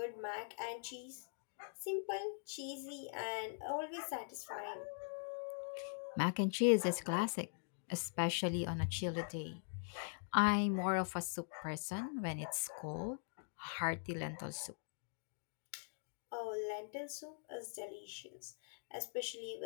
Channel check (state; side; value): silent; right; digital silence